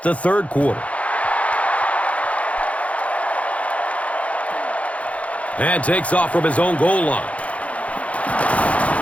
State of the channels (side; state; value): right; late; 0.065 ms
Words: the third quarter. And takes off from his own goal line.